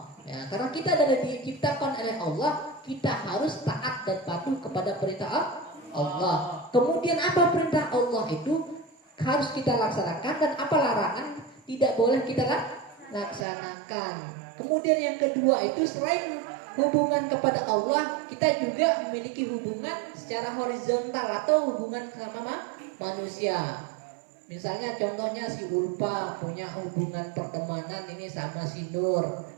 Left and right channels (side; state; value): left; drops out; at 13.5 s